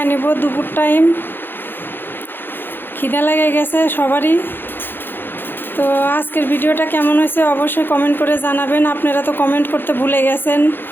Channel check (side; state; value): right; late; 0.099 ms